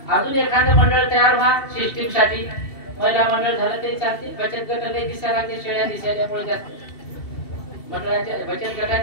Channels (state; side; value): late; right; 2.7 ms